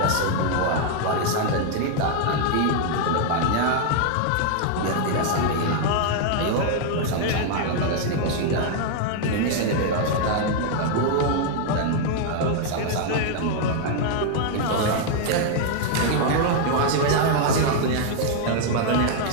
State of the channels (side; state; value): both; different; correlation 0.00